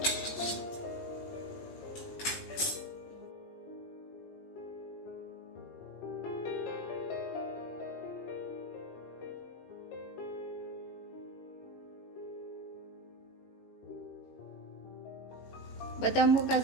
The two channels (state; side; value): late; right; 18 ms